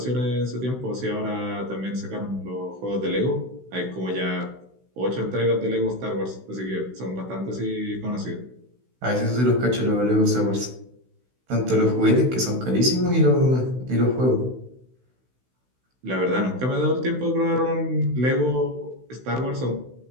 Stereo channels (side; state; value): left; late; 16 ms